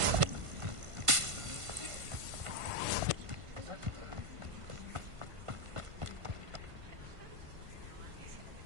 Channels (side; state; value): left; late; 1.5 ms